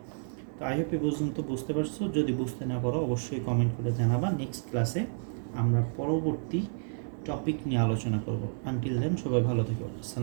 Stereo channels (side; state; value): left; silent; 57 dB below the other